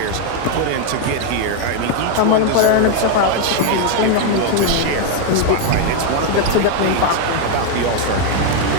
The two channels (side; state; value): both; different; correlation 0.01